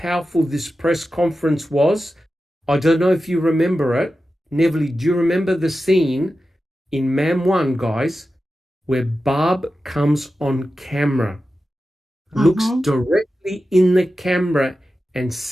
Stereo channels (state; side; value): normal; both; correlation 0.92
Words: this press conference was, I don't know if you remember it. Neverly, do you remember the scene in Mam 1, guys, where Barb comes on camera, looks directly in the camera and